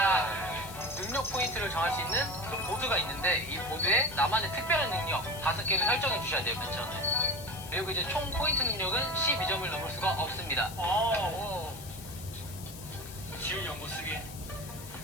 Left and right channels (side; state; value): left; noise; hiss, 14 dB below the sound